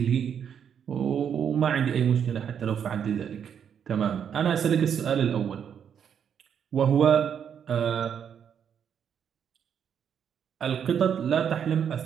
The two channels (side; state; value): left; quieter; 8.1 dB